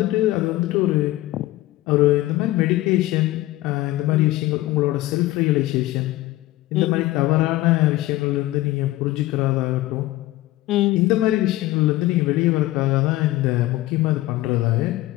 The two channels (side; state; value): right; quieter; 17.0 dB